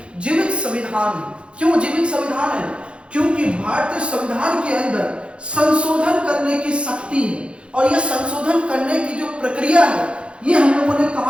जीवित संविधान है। क्यों जीवित संविधान है, क्योंकि भारतीय संविधान के अंदर संशोधन करने की शक्ति है। और यह संशोधन करने की जो प्रक्रिया है ये हम लोगों ने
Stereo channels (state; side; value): late; left; 0.058 ms